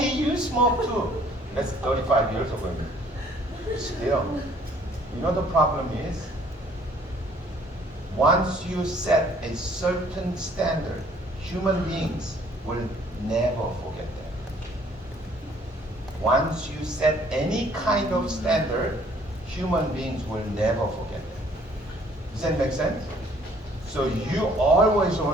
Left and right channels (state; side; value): normal; both; correlation 0.59